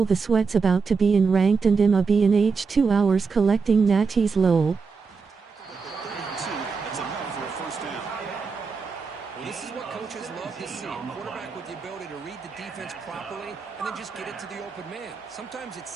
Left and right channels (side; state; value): left; quieter; 4.9 dB